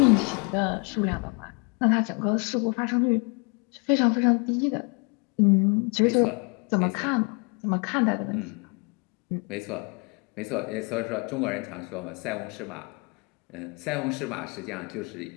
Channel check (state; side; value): quieter; right; 33.4 dB